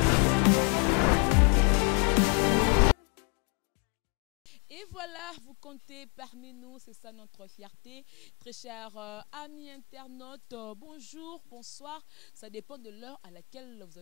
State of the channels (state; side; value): quieter; right; 35.0 dB